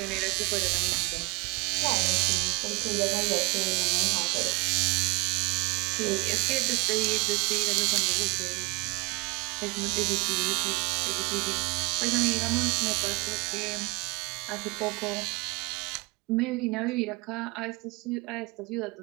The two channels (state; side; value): quieter; left; 27.7 dB